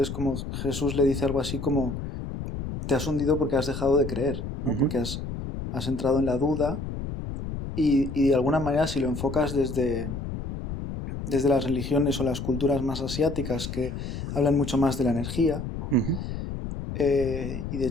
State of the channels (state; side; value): noise; left; rumble, 6 dB below the sound